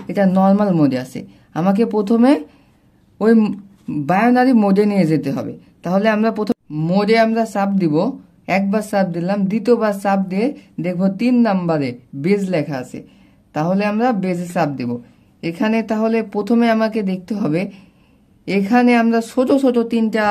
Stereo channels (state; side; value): identical; both; correlation 1.00